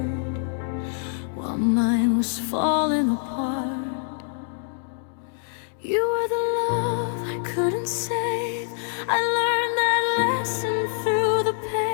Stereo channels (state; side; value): silent; right; digital silence